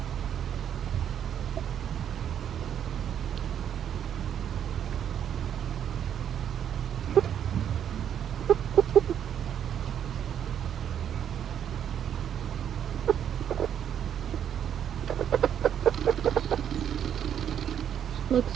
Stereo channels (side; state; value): left; quieter; 9.3 dB